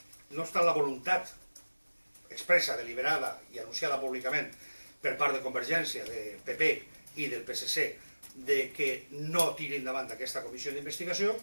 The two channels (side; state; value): both; inverted; correlation -1.00